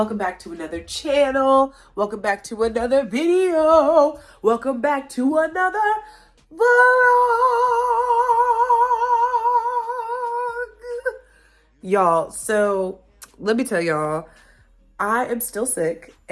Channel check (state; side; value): identical; both; correlation 1.00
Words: back to another channel. Welcome back to another video. Welcome back to another vlog. Y'all, so let me tell y'all, I am still sick